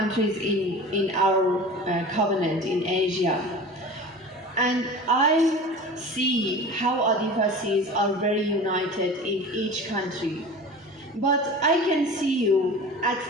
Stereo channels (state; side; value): normal; both; correlation 0.36